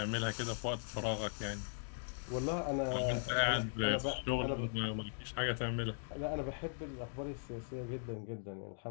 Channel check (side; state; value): right; silent; digital silence